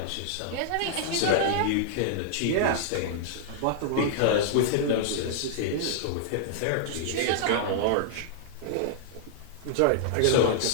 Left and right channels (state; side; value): different; both; correlation -0.01